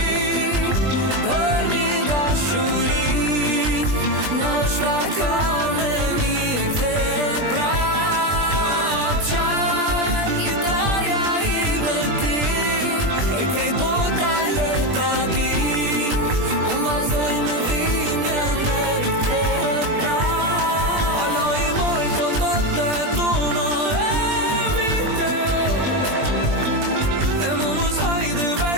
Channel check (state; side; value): late; left; 20 ms